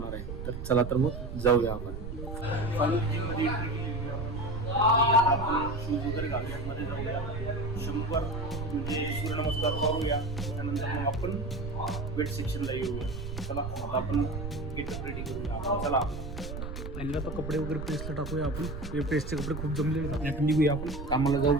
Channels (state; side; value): noise; right; rumble, 7 dB below the sound